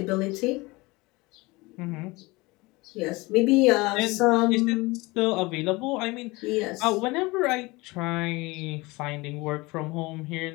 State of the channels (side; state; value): right; quieter; 23.1 dB